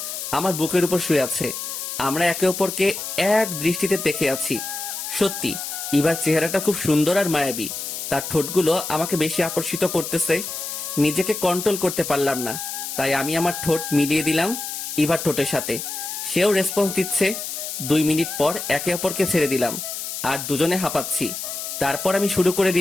আমার বুকের উপর শুয়ে আছে। আমরা একে অপরকে এক দৃষ্টিতে দেখে আছি। সত্যি ইভার চেহারাটা খুব সুন্দর আর মায়াবী। তার ঠোঁটগুলো আমাকে বেশি আকর্ষিত করতেছে। নিজেকে কন্ট্রোল করতে পারলাম না, তাই আমি আমার ঠোঁট মিলিয়ে দিলাম ইভার ঠোঁটের সাথে। সেও রেসপন্স দিচ্ছে। 2 মিনিট পর একে অপরকে ছেড়ে দিলাম, আর দুজনে হাঁপাচ্ছি। তারপর আমি শুরু করে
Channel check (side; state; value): left; noise; hiss, 6 dB below the sound